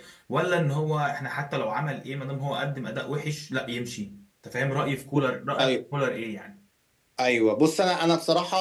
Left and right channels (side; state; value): both; identical; correlation 1.00